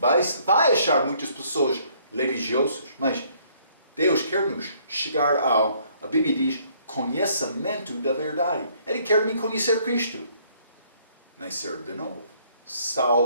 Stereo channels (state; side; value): inverted; both; correlation -0.64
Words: achar muitas pessoas religiosas, mas Deus quer nos chegar a Bíblia diz, conhecimento da verdade. Ele quer me conhecer Cristo. Nascer de novo.